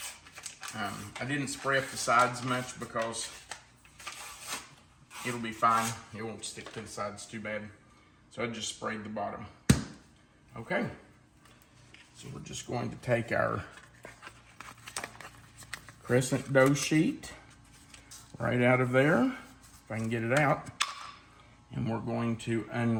I didn't spray up the sides much because it'll be fine. It won't stick to the sides too bad. So I just sprayed the bottom. Okay. So we're just going to take our crescent dough sheet right out of there, if I can get it out. And we're going to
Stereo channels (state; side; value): identical; both; correlation 1.00